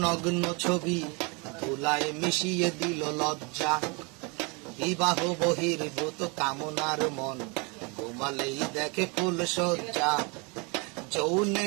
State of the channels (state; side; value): quieter; left; 30.6 dB